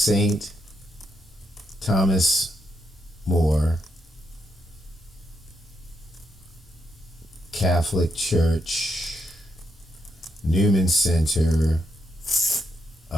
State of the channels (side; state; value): both; normal; correlation 0.80